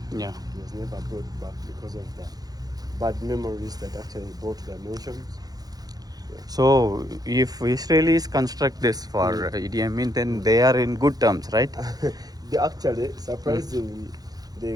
Yeah. He was never brought back because of the bad memories that actually brought the emotions. So, if Israelis construct this for Idi Amin, then they are in good terms, right? They actually, surprisingly,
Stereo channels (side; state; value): left; late; 0.19 ms